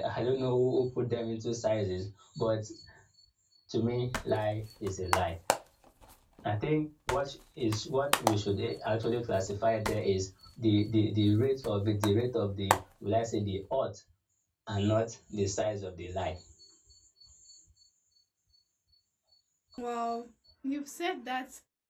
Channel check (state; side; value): identical; both; correlation 1.00